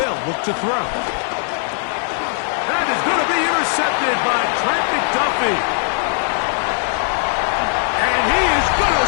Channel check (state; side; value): silent; right; 60 dB below the other